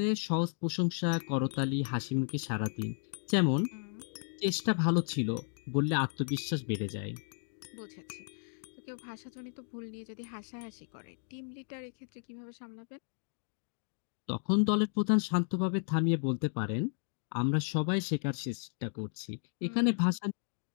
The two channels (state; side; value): silent; right; digital silence